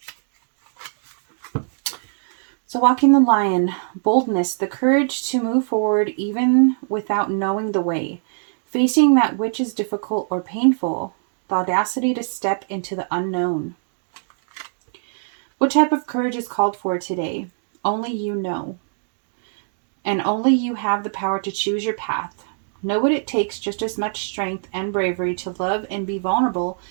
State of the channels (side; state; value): left; silent; 64 dB below the other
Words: So Walking the Lion, boldness, the courage to move forward even without knowing the way, facing that which is difficult or painful, the audacity to step into the unknown. What type of courage is called for today? Only you know. And only you have the power to choose your path. Know what it takes, just as much strength and bravery to love and be vulnerable